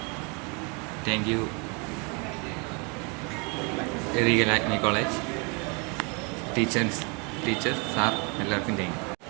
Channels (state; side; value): quieter; left; 32.4 dB